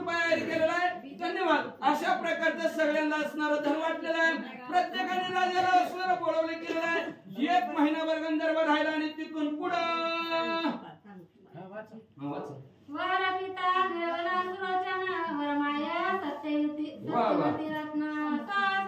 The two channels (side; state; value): both; identical; correlation 1.00